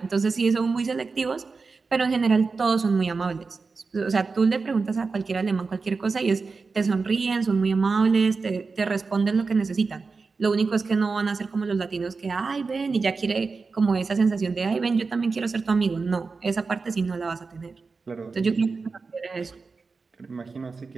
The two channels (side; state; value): left; quieter; 4.4 dB